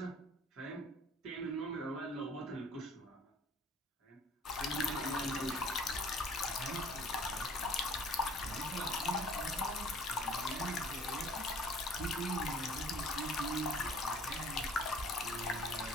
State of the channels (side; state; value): both; normal; correlation 0.52